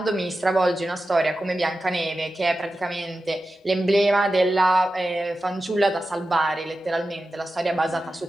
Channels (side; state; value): both; normal; correlation 0.93